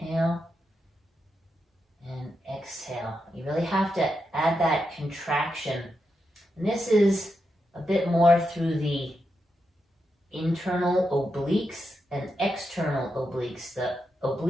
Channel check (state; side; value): normal; both; correlation 0.86